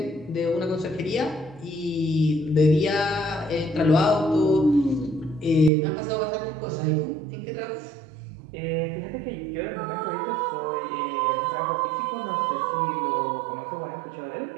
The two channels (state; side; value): drops out; left; at 5.7 s